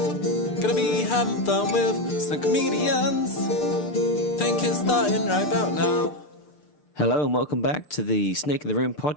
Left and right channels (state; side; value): late; right; 6.7 ms